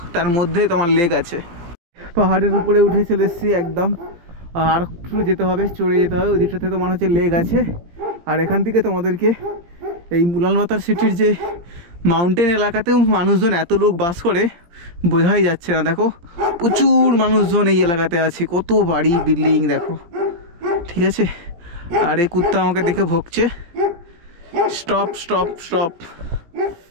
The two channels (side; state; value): left; late; 17 ms